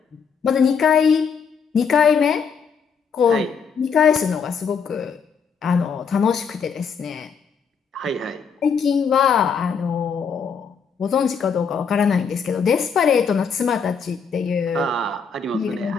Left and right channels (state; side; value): quieter; right; 6.2 dB